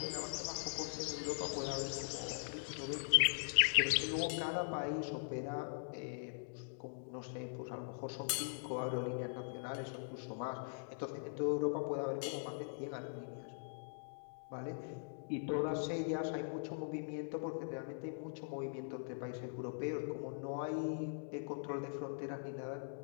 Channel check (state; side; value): silent; right; digital silence